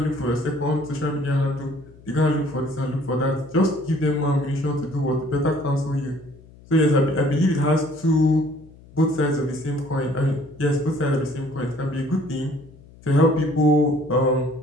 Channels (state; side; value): noise; left; hum, 23 dB below the sound